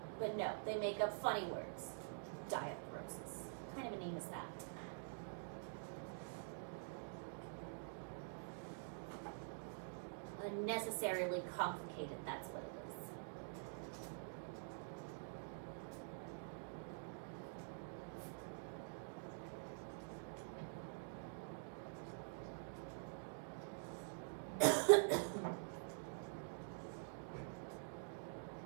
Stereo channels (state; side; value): silent; left; digital silence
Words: But no, they make up funny words. Diarthrosis. What kind of a name is that? Unnecessarily complicated, that's what it is.